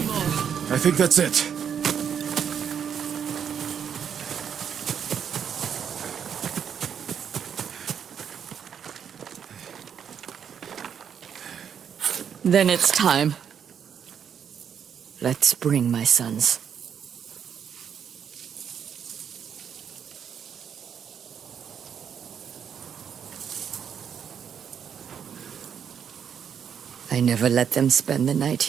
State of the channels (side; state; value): left; quieter; 8.0 dB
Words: I think that's it. Then it's time. Let's bring my sons. I never let them spend the night